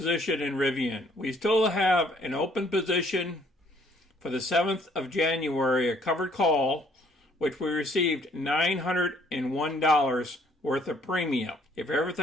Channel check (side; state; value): both; normal; correlation 0.63